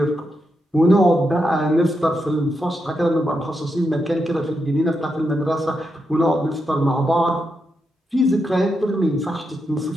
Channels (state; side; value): normal; both; correlation 0.84